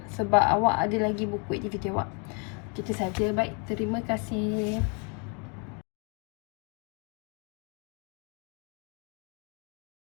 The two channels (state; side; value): quieter; right; 36.8 dB